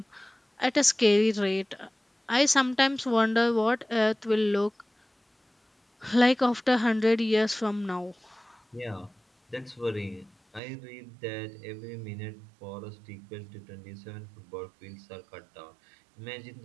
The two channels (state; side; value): drops out; left; at 10.6 s